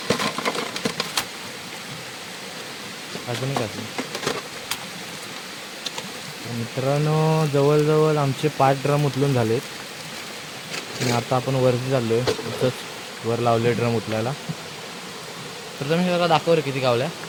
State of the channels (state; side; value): identical; both; correlation 1.00